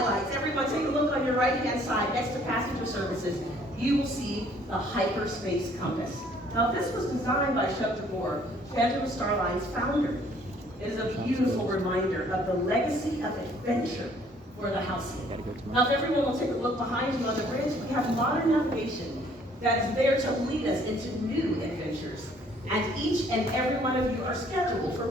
Everyone take a look on your right-hand side next to passenger services. You will see the hyperspace compass. Now, this was designed by Chuck DeBoer, Phantom Starline's founder. It is a beautiful reminder of the legacy of adventure for the Halcyon. Now, if everyone will take a look behind you on the bridge, we have modern navigation that is there to lead us into new adventures. And each and every one of you are scheduled for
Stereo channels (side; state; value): both; normal; correlation 0.60